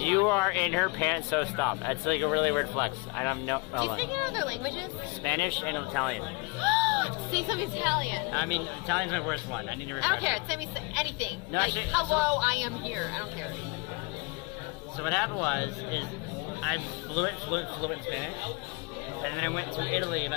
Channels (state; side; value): quieter; right; 28.6 dB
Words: are in her pants, so stop. That's like a really weird flex. I don't know. Do you speak any other languages? Spanish and Italian. Say something Italian. I mean, Italian's my worst one. I need to I refresh. don't care. Send me anything. No, like, actually, hello, I am here. I don't care. So what happened is I'm fluent in Spanish. And then I went to Italy